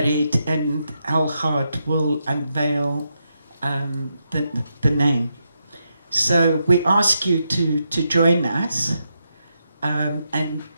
and Algaard will unveil the name. So we ask you to join us and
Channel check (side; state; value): both; inverted; correlation -0.83